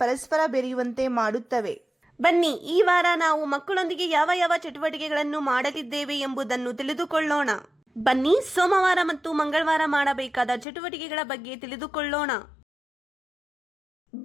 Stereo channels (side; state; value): right; drops out; at 10.7 s